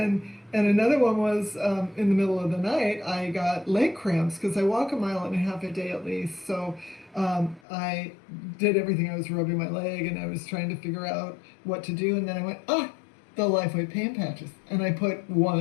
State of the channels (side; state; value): right; drops out; at 7.6 s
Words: another one was in the middle of the night, I got leg cramps because I walk 1.5 miles a day at least. So I did everything. I was rubbing my leg and I was trying to figure out what to do. And then I went, the LifeWave pain patches. And I put